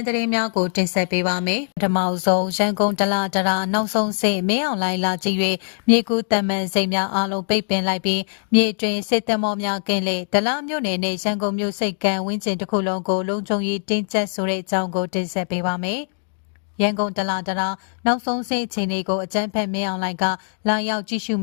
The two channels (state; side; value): silent; right; digital silence